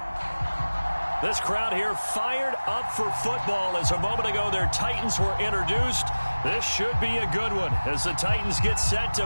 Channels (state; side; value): inverted; both; correlation -1.00